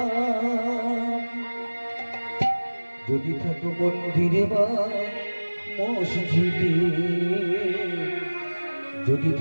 যদি থাকো মন্দিরে বা মসজিদে, যদি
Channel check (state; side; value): inverted; both; correlation -1.00